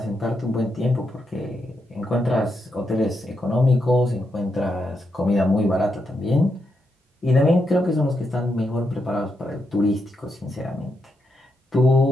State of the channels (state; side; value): normal; both; correlation 0.82